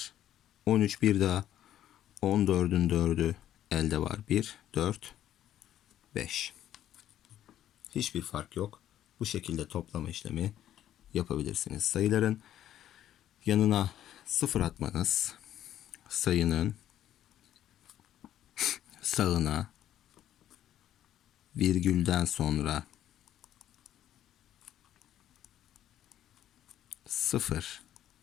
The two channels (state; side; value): quieter; right; 11.8 dB